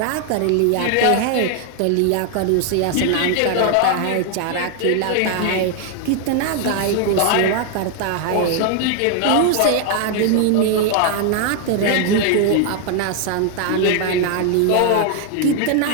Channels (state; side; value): different; both; correlation 0.00